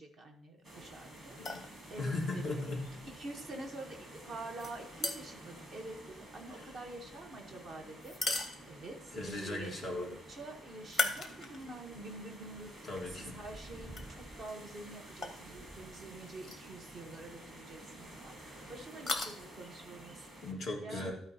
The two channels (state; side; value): normal; both; correlation 0.74